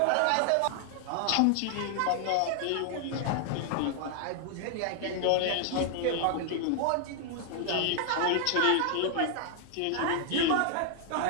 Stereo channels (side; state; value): both; different; correlation 0.00